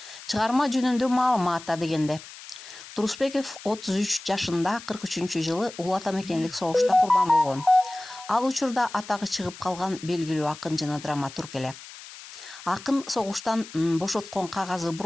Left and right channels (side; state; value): left; noise; hiss, 16 dB below the sound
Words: Чыгарма жөнүндө маалыматта дегенде, Турусбеков 33 жашында 43-жылы Улуу Ата Мекендик согушта курбан болгон. Ал учурда атагы чыгып калган белгилүү акын жана драматург эле. Акын согуштан бошоткон кагазы